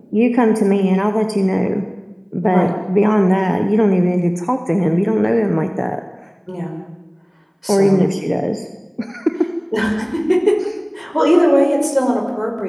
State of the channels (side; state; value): both; identical; correlation 1.00